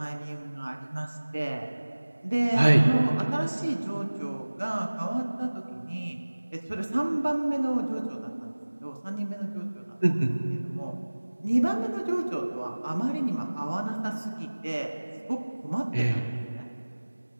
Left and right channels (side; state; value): both; inverted; correlation -1.00